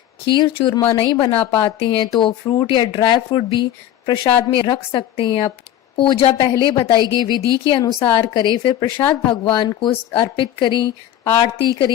खीर चूरमा नहीं बना पाते हैं, तो फ्रूट या ड्राई फ्रूट भी प्रसाद में रख सकते हैं। आप पूजा पहले बताई गई विधि के अनुसार करें, फिर प्रसाद भगवान को अर्पित करें, आरती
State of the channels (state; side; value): quieter; right; 11.8 dB